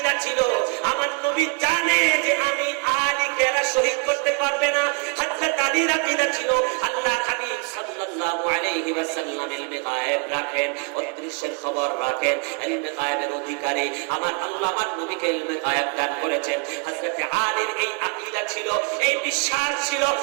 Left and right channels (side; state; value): left; quieter; 35.1 dB